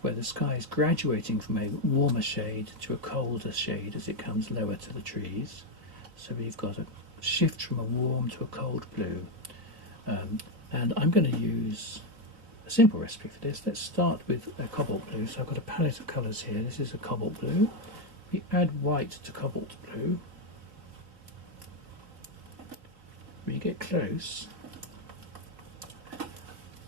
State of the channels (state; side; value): late; left; 3.9 ms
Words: where the sky is graduating from a warmer shade to a colder shade as it comes lower to the trees. So we've got a shift from a warm to a cold blue, and I'm going to use a simple recipe for this. Let's start with a cobalt blue. So I've got a palette of colours here. This is a cobalt blue. We add white to cobalt blue. When you get close,